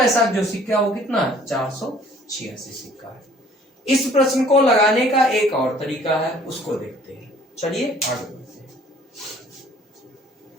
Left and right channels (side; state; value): both; normal; correlation 0.55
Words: जो सिक्का वो कितना है, 486 सिक्का है। इस प्रश्न को लगाने का एक और तरीका है, उसको देखते हैं। चलिए आगे बढ़ते हैं।